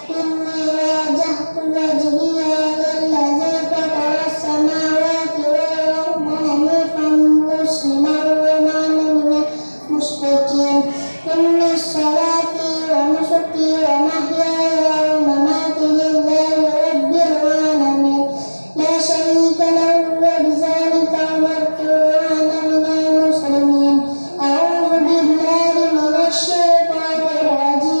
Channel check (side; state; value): both; inverted; correlation -1.00